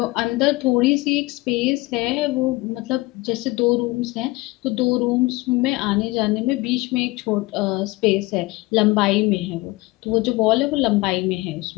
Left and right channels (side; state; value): right; quieter; 21.7 dB